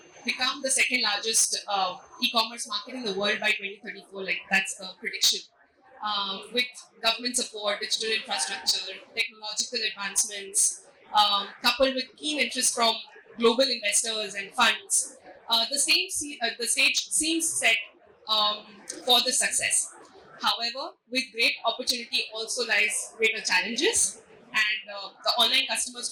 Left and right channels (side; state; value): both; identical; correlation 1.00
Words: become the second largest e-commerce market in the world by 2034. Like that's the prediction. With government support, digital infrastructure, technological advancements, coupled with keen interest from global investors and funds, the stage seems set for the success. However, with great opportunity also lies greater challenges, and the online customers